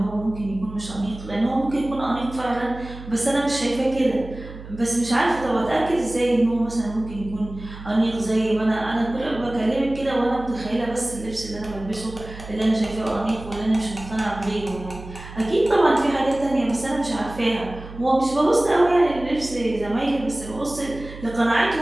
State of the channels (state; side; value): noise; right; hum, 14 dB below the sound